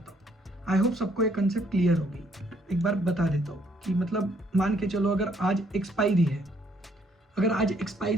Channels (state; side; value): normal; both; correlation 0.67